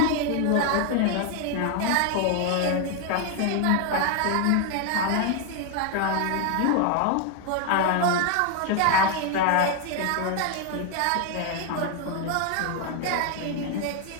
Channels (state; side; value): different; both; correlation 0.01